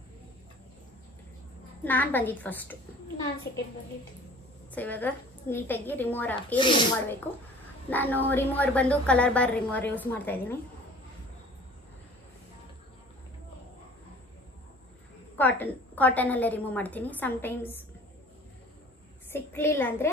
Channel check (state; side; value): normal; both; correlation 0.47